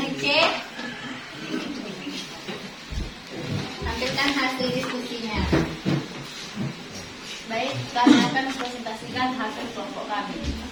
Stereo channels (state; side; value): identical; both; correlation 1.00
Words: cek. Tampilkan hasil diskusinya. Baik, kami akan presentasikan hasil kelompok kami.